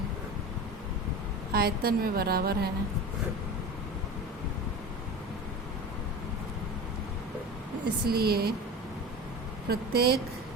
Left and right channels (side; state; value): both; normal; correlation 0.30